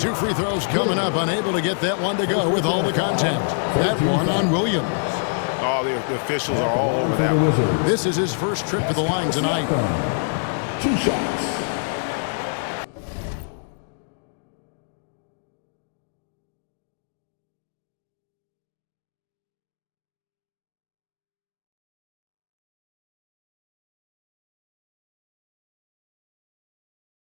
free throws coming up. Unable to get that one to go with all the contact. That one on Williams. Oh, the officials are all over that one. This is his first trip to the line tonight. 2 shots.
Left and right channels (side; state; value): right; silent; digital silence